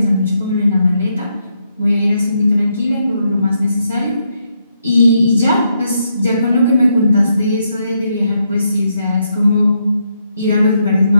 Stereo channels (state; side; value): inverted; both; correlation -0.79